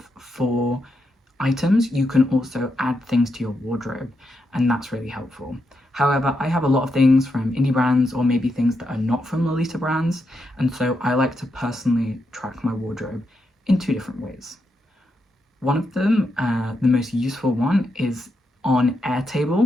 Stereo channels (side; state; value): both; normal; correlation 0.83